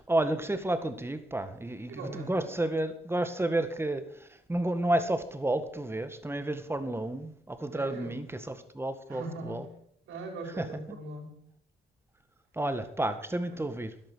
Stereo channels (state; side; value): normal; both; correlation 0.84